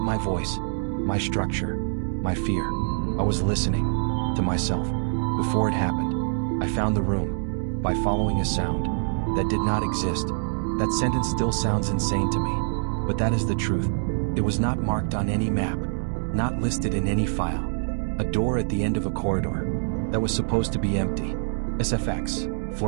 voice, my structure, my fear. I was listening to myself. Before it happened, I found the room by following a sound that did not exist. That sentence still sounds insane to me, but that is the truth. It was not marked on any map, not listed in any file. A door at the end of a corridor that was supposed to be empty. SFX,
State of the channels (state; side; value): silent; left; digital silence